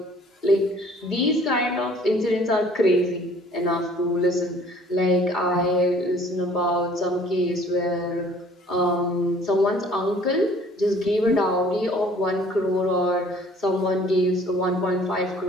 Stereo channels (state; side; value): normal; both; correlation 0.55